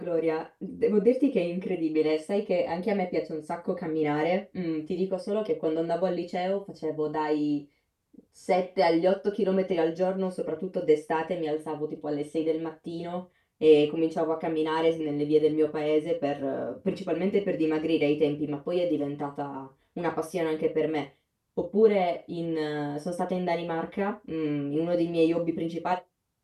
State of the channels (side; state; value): both; identical; correlation 1.00